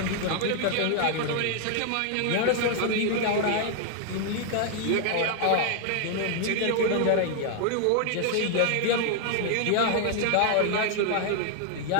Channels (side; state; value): both; different; correlation 0.00